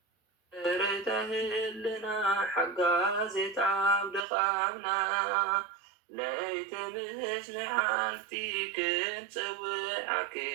ريتهلنا حقا زيت عبد خامنا ليت مش لحالتي كنت سوي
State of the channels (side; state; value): left; drops out; at 4.2 s